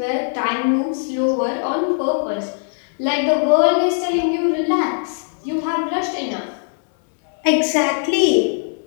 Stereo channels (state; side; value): silent; right; 66 dB below the other